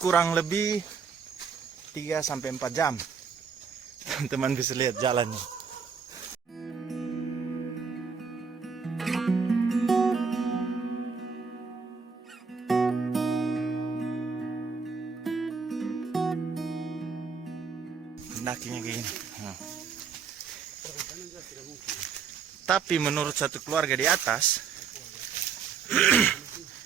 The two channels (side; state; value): left; quieter; 5.9 dB